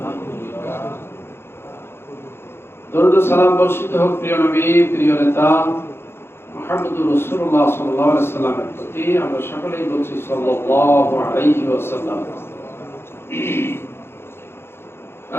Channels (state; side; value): late; right; 0.12 ms